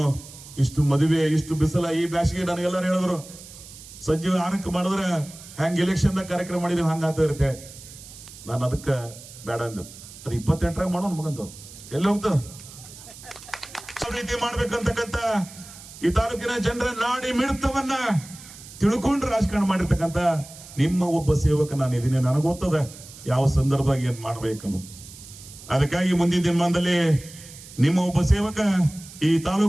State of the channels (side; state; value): right; noise; hiss, 17 dB below the sound